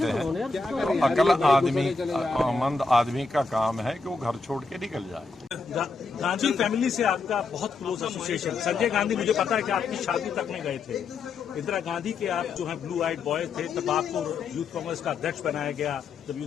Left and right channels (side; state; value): right; quieter; 4.1 dB